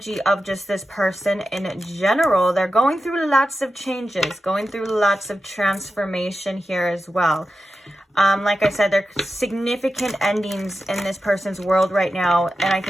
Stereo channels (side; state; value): both; normal; correlation 0.91